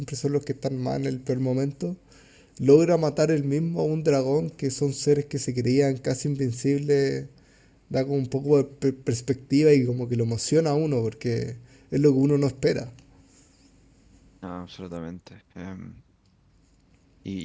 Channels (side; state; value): both; identical; correlation 1.00